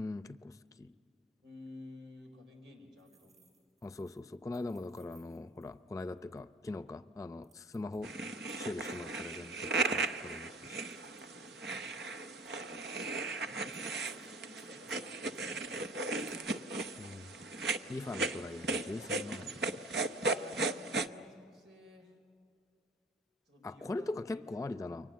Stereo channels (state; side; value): normal; both; correlation 0.47